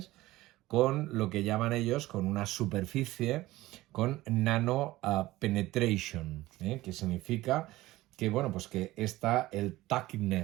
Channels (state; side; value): quieter; left; 17.6 dB